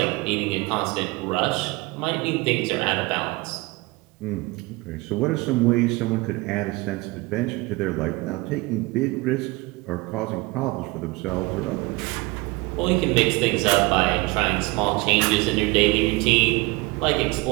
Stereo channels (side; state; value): left; quieter; 23.3 dB